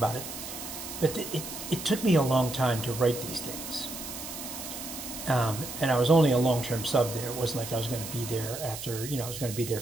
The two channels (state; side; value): noise; right; hiss, 9 dB below the sound